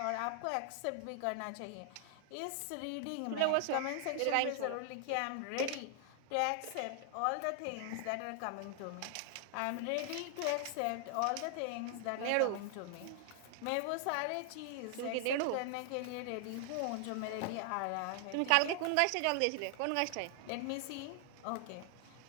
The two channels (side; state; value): both; different; correlation 0.00